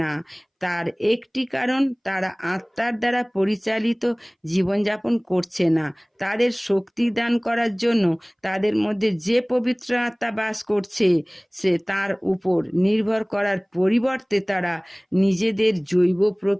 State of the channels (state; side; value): identical; both; correlation 1.00